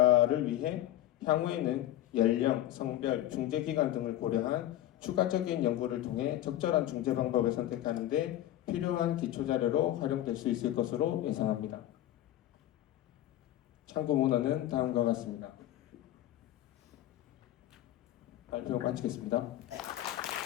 위해 향후에는 연령, 성별, 중재 기간 등을 고려한 추가적인 연구를 통해 적절한 중재 방법을 선택하는 데 필요한 기초자료로 활용될 수 있을 것으로 예상합니다. 참고 문헌은 다음과 같습니다. 발표 마치겠습니다.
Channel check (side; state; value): right; quieter; 13.5 dB